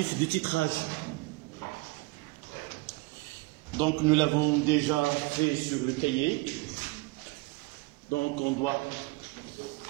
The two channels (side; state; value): left; quieter; 23.5 dB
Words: de titrage. Donc nous l'avons déjà fait sur le cahier. Donc on doit